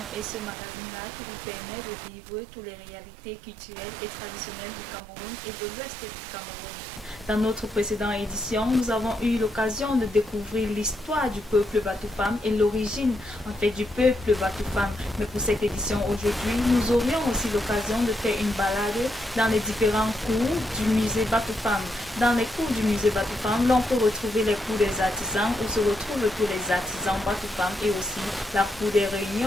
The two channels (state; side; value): normal; both; correlation 0.81